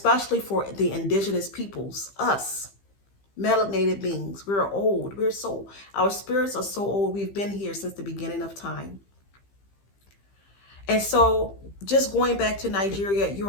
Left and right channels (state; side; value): late; right; 15 ms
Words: for the indigenous peoples, us, melanated beings. We're old. Our spirits are so old. We've been here since the beginning of time. And so just going back to Nigeria, you